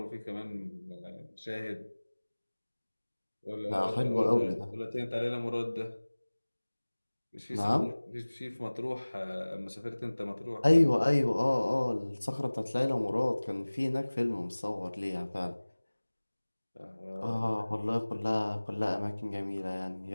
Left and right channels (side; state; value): both; inverted; correlation -1.00